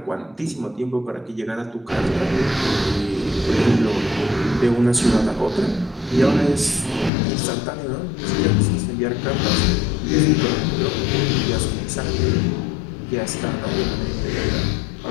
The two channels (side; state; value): right; drops out; at 7.1 s